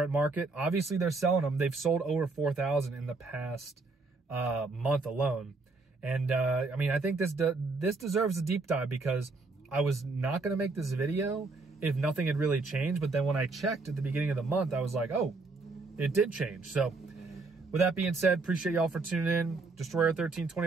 market. Obviously they're selling them. They've sold over 4,000 in the past month alone. And I mean, I think this deserves a deep dive, because I was not going to make this video if nothing had really changed. But then when I checked at the beginning of the month, I was like, oh, it did change. So with that being said, appreciate y'all for tuning in.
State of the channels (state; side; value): quieter; left; 3.7 dB